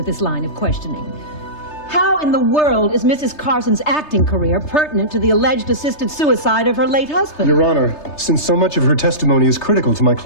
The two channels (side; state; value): right; late; 3.3 ms